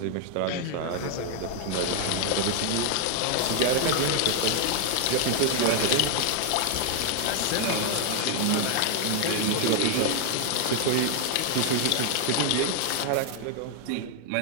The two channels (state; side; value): different; both; correlation 0.00